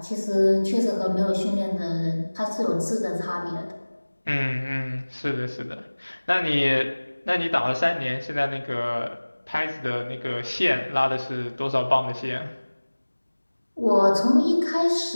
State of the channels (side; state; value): both; inverted; correlation -1.00